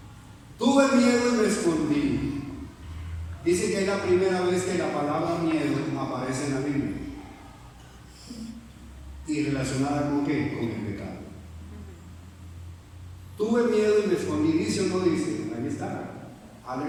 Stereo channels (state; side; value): identical; both; correlation 1.00